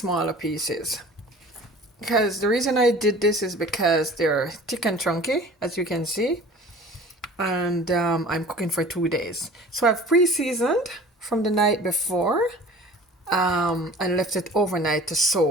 pieces. Because the reason I did this is because they're thick and chunky, as you can see. And I'm cooking for 2 days. So I've pre-seasoned from the night before and left it overnight to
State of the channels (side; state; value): both; normal; correlation 0.44